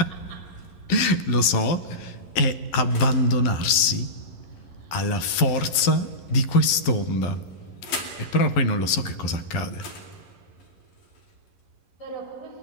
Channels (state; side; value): late; right; 11 ms